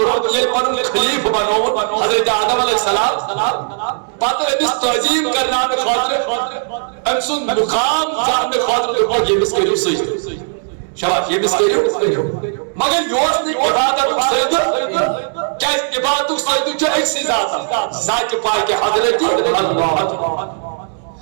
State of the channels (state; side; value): silent; left; digital silence